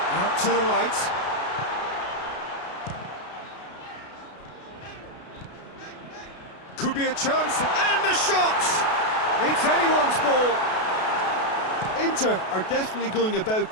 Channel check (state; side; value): late; right; 32 ms